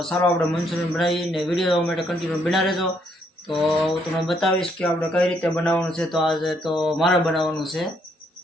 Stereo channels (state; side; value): normal; both; correlation 0.71